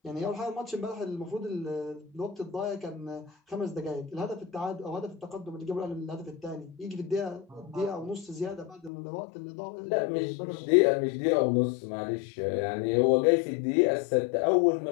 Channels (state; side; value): drops out; right; at 8.9 s